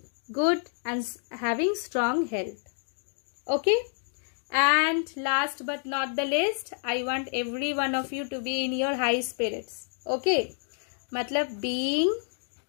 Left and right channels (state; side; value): silent; right; 59 dB below the other